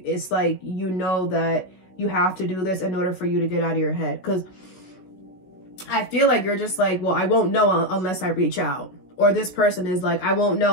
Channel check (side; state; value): right; late; 16 ms